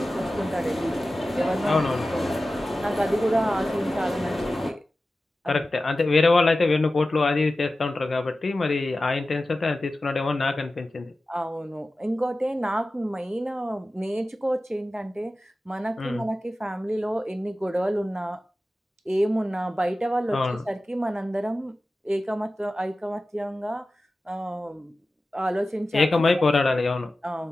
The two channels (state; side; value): normal; both; correlation 0.95